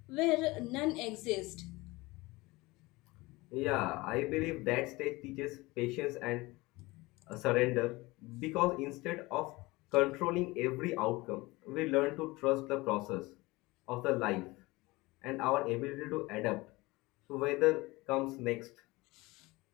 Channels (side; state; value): right; quieter; 21.9 dB